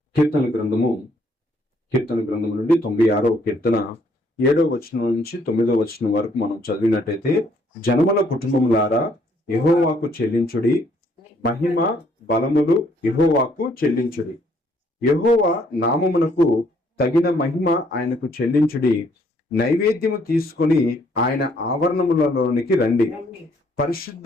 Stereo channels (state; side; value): normal; both; correlation 0.66